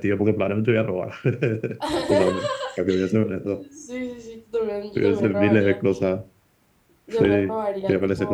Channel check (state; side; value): identical; both; correlation 1.00